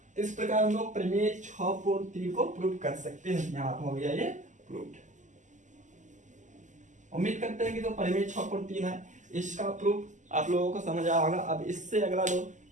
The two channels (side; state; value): left; late; 0.36 ms